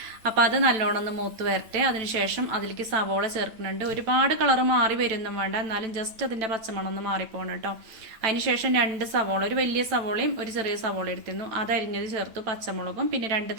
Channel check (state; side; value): late; left; 9.0 ms